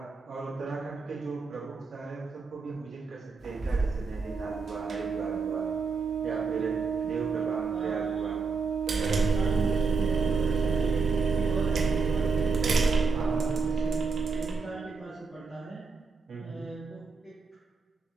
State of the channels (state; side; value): quieter; left; 4.7 dB